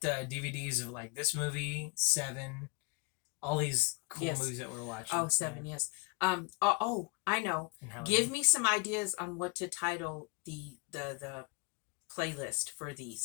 DVDs of like this movie, Seven, all these cool movies that we're watching. Oh, Seven, yes. I know. And how Give me some ideas on what to title the playlist for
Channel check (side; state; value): right; quieter; 29.6 dB